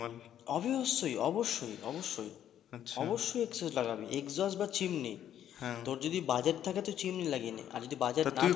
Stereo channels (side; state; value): right; quieter; 10.6 dB